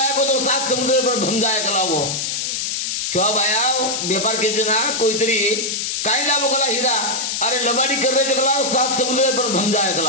को तो 7 समुद्र पर भम जाए कलावो सेवा बाया व्यापार के जना कोई तरी काय लावो कला हीरा अरे लबाडी कर रहे कलावो 7 समुद्र पर भम जाए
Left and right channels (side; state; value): left; noise; hiss, 1 dB below the sound